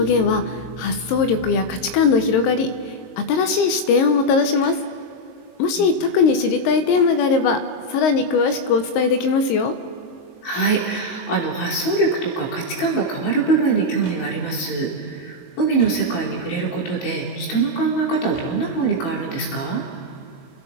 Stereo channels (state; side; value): late; right; 22 ms